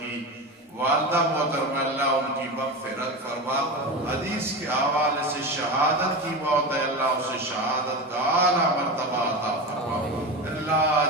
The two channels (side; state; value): both; normal; correlation 0.23